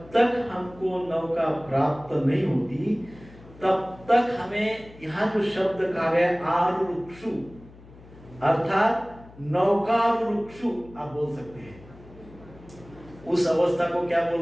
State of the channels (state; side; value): noise; left; hum, 21 dB below the sound